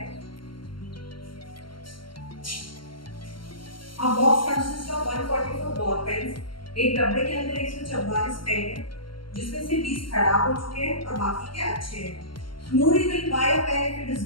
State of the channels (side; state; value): right; late; 0.73 ms